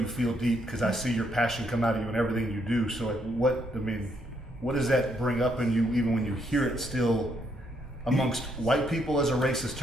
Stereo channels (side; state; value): both; normal; correlation 0.74